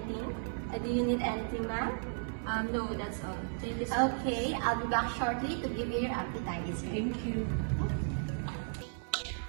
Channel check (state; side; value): silent; left; 55 dB below the other